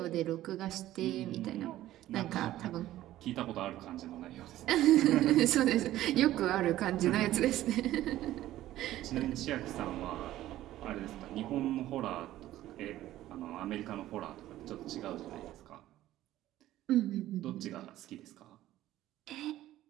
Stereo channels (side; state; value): left; quieter; 14.3 dB